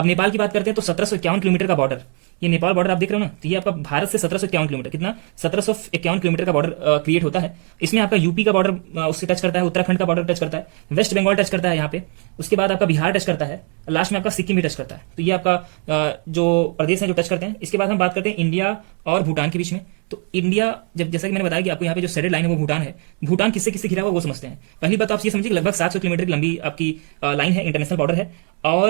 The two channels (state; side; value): quieter; left; 37.7 dB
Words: नेपाल की बात करते हैं तो 1751 किलोमीटर का बॉर्डर, ये नेपाल बॉर्डर आप देख रहे हो ना, तो ये आपका भारत से 1751 किलोमीटर, कितना 1751 किलोमीटर का बॉर्डर क्रिएट होता है। इसमें आपका यूपी का बॉर्डर उससे टच करता है, उत्तराखंड का बॉर्डर टच करता है, वेस्ट बंगाल टच करता है यहाँ पे, उसके बाद आपका बिहार टच करता है, लास्ट में आपका सिक्किम भी टच करता है। तो ये आपका जो प्रदेश है जो टच करते हैं। इसके बाद हम बात करते हैं इंडिया और भूटान के बीच में। तो इंडिया जब जैसा कि मैंने बताया कि आपको यहाँ पे जो शेडेड लाइन है वो भूटान है। भूटान किससे किससे घिरा हुआ वो समझते हैं। पहली बात आप ये समझिए कि लगभग 700 किलोमीटर की लंबी आपकी लाइन है, इंटरनेशनल बॉर्डर है।